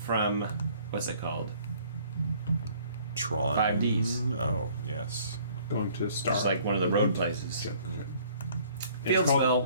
what's it called? Tron. 5Ds. Oh, yes. going to Star. It's like one of the road places. And Field it's called spell.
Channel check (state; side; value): inverted; both; correlation -0.57